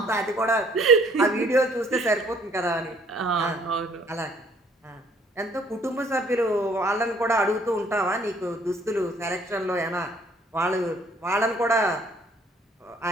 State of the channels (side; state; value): both; normal; correlation 0.60